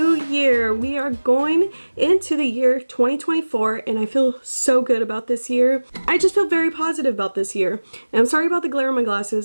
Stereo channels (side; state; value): both; inverted; correlation -1.00